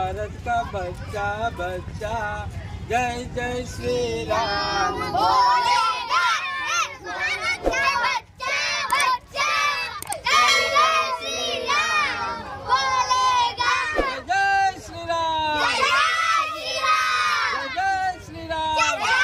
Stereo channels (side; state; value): both; identical; correlation 1.00